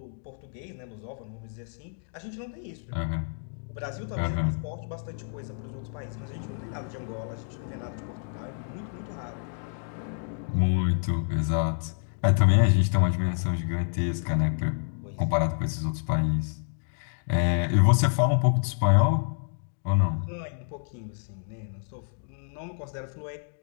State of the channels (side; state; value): right; silent; digital silence